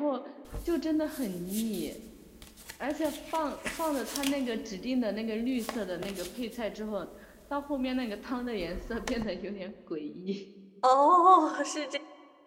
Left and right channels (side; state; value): both; identical; correlation 1.00